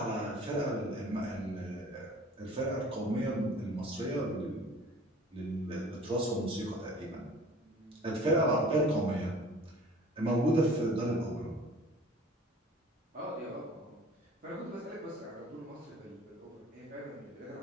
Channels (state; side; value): normal; both; correlation 0.47